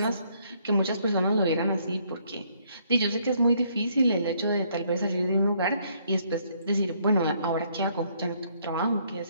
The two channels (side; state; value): both; inverted; correlation -0.68